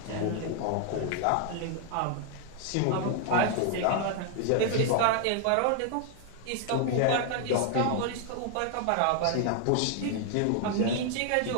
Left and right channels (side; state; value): both; different; correlation 0.00